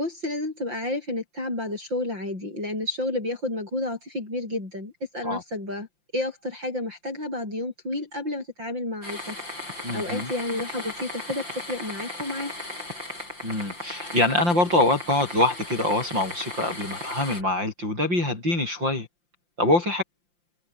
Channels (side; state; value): left; late; 5.7 ms